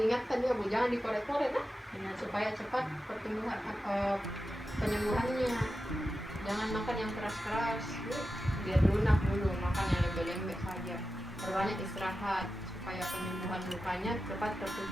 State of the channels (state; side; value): normal; both; correlation 0.92